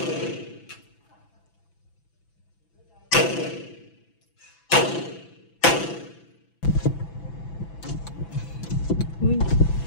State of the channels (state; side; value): late; right; 6.0 ms